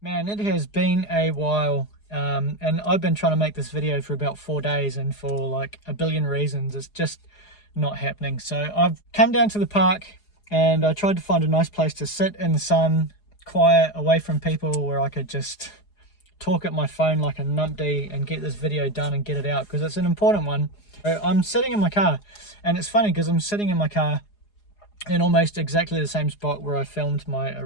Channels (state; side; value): late; right; 4.8 ms